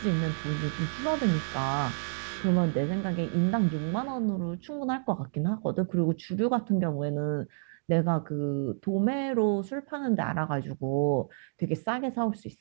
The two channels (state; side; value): silent; left; digital silence